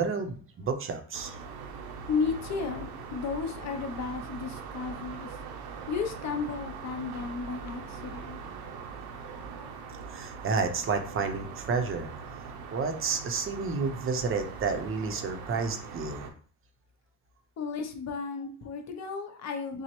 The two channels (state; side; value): normal; both; correlation 0.15